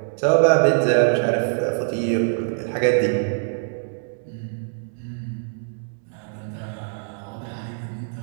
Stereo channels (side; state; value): left; silent; digital silence